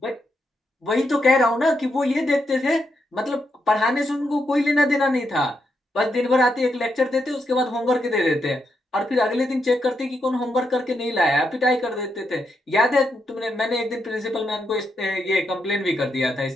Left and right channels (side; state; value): both; normal; correlation 0.82